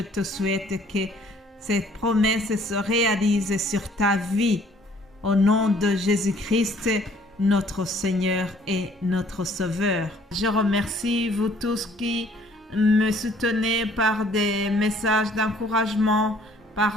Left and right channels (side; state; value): both; normal; correlation 0.59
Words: te souhaite que ces promesses se réalisent sur ta vie. Au nom de Jésus-Christ, notre Seigneur et notre Sauveur. Je remercie vous tous qui me soutenez par des messages d'encouragement,